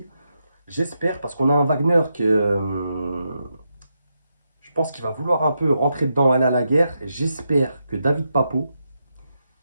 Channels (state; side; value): inverted; both; correlation -0.84